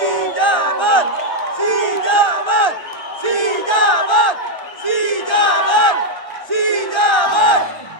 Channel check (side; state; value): right; late; 1.1 ms